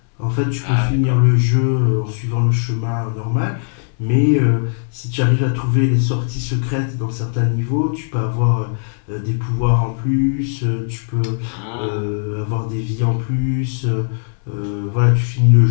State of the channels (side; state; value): right; silent; digital silence